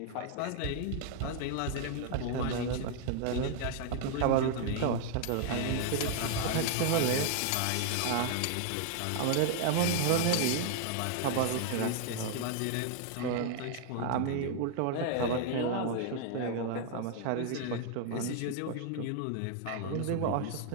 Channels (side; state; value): both; different; correlation 0.00